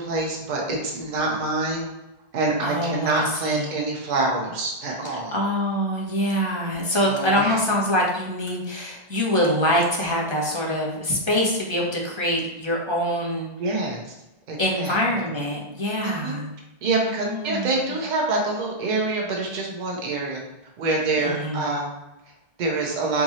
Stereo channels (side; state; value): left; late; 1.3 ms